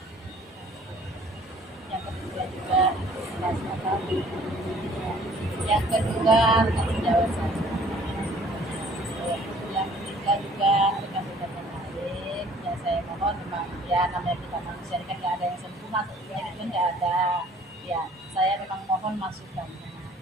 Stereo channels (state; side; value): normal; both; correlation 0.55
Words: juga rekan sejawat saya. Yang ketiga juga rekan-rekan yang lain. Ya saya mohon memang ya namanya kita manusia ini kan nggak ada yang sempurna, tentunya itu kan nggak ada. Ya saya memang mohon masukannya.